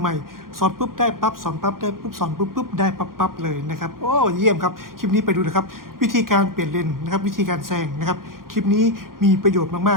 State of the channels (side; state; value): left; late; 0.91 ms